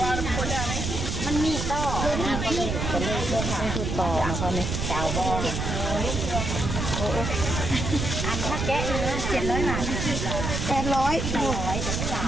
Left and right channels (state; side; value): noise; right; rumble, 2 dB below the sound